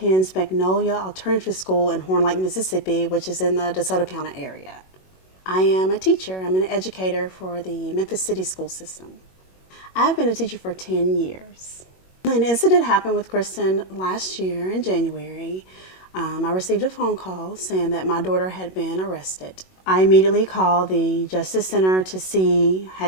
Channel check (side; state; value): right; late; 21 ms